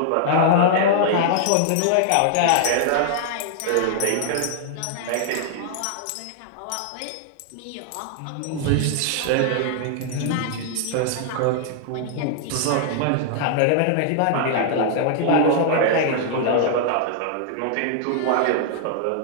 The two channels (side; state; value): both; different; correlation -0.01